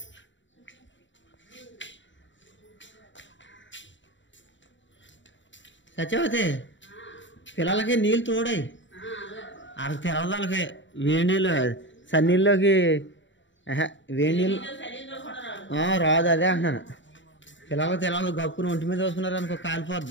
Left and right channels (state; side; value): late; right; 0.54 ms